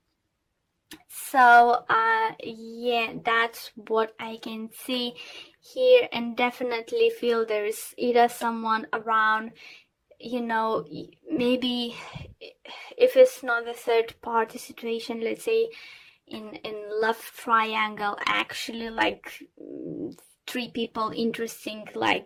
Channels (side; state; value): both; identical; correlation 1.00